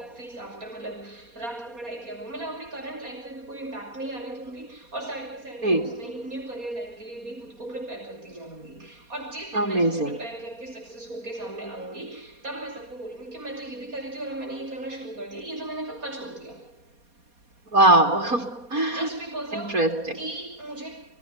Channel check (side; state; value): left; late; 4.2 ms